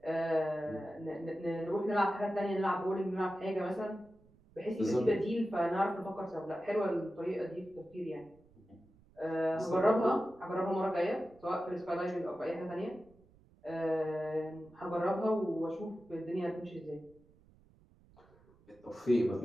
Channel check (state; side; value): noise; right; rumble, 28 dB below the sound